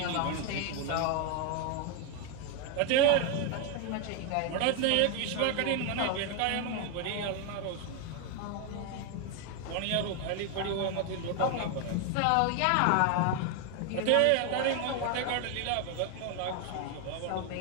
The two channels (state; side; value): different; both; correlation 0.01